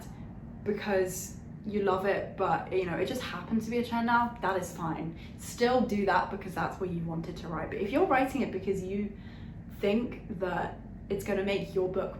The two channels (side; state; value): both; identical; correlation 1.00